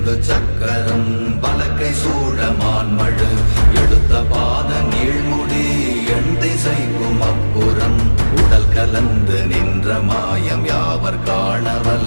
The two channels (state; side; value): inverted; both; correlation -1.00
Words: சக்கரம் வலக்கை சூழமான்மழு எடுத்த பாத நீழ்முடி எண் திசைக்கும் அப்புறம் உடல் கலந்து நின்ற மாயம் யாவர் காண